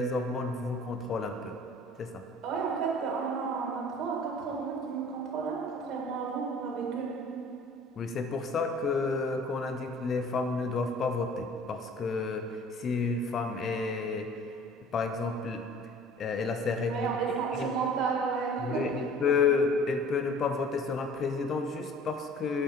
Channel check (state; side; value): normal; both; correlation 0.48